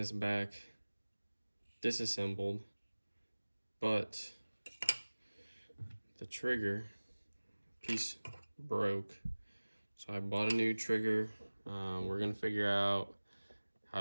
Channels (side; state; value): both; inverted; correlation -1.00